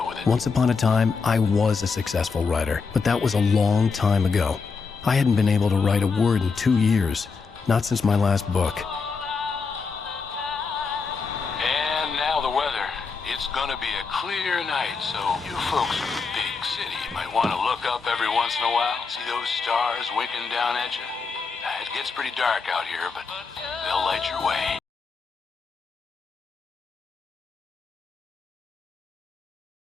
with it. Once upon a time, I was a successful writer, but that was a long time ago. I hadn't been able to write a word in 2 years. Not since my last book. And now the weather. It's gonna be a clear night, so you folks in the big city might want to look up every once in a while, see those stars winking down at you. It gets pretty dark out here, but they'll light your way.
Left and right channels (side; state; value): right; quieter; 4.9 dB